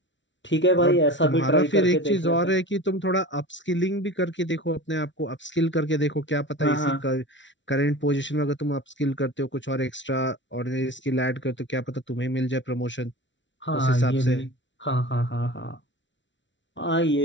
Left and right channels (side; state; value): right; late; 0.54 ms